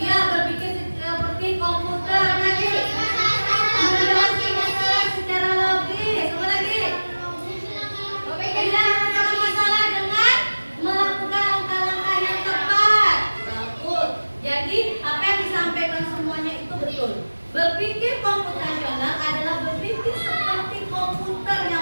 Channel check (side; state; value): both; inverted; correlation -1.00